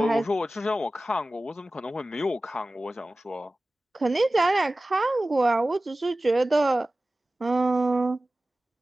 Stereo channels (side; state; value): both; normal; correlation 0.96